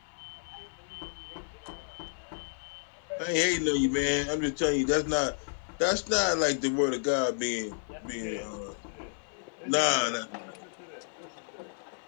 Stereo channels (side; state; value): right; silent; digital silence